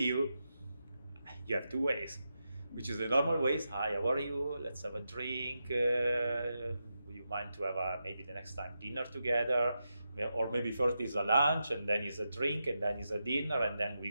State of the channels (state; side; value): inverted; both; correlation -0.88